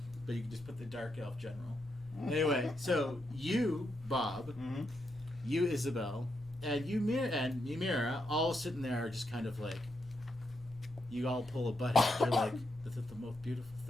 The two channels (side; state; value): both; normal; correlation 0.82